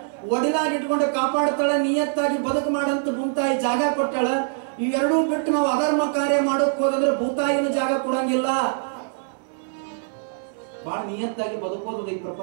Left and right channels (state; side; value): silent; left; 62 dB below the other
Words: ಒಡಿಲಾಗಿ ಇಟ್ಕೊಂಡು ಕಾಪಾಡ್ತಾಳ, ನಿಯತ್ತಾಗಿ ಬದುಕು ಮಾಡಂತ ಭೂತಾಯಿ ಜಾಗ ಕೊಟ್ಟಾಳ. ಇವೆರಡೂ ಬಿಟ್ಟು ನಾವು ಅಧರ್ಮ ಕಾರ್ಯ ಮಾಡೋಕ್ ಹೋದಂದ್ರೆ ಭೂತಾಯಿನ ಜಾಗ ಕೊಡಂಗಿಲ್ಲ. ಬಹಳ ನಿಯತ್ತಾಗಿ ಬದುಕೋದು ಈ